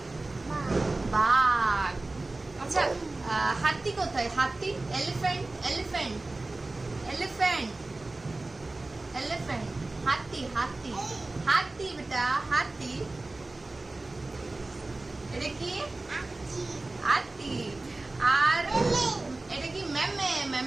বাঘ। আচ্ছা, হাতি কোথায়? হাতি। Elephant, elephant, elephant, elephant. হাতি, হাতি, হাতি বেটা, হাতি। এটা কি? হাতি। আর এটা কি? মেমে,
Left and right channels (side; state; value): left; quieter; 3.1 dB